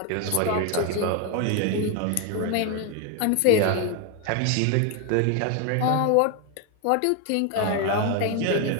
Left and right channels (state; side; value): different; both; correlation 0.01